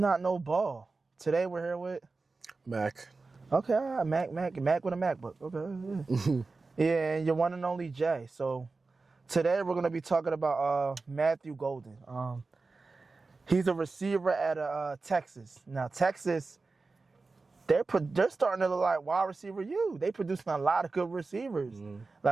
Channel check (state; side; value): quieter; left; 3.9 dB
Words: Know Ball. Today we're here with, Mac. okay, all right, Mac with a MacBook. Okay, yeah, and your one and only Jay. So today we're gonna be talking about Matthew Golden. He's a receiver at Texas. Now Texas, they're starting to look like wide receiver U. They producing a lot of good receivers.